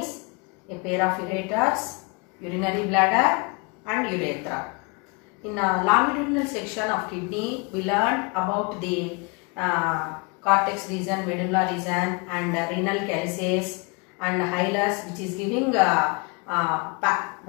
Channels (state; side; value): quieter; right; 30.6 dB